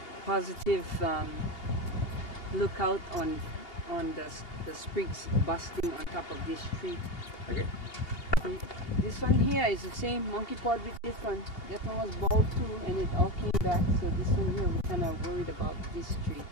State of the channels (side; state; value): right; late; 2.8 ms